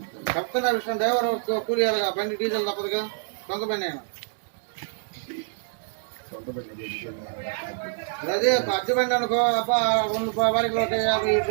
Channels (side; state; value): left; silent; digital silence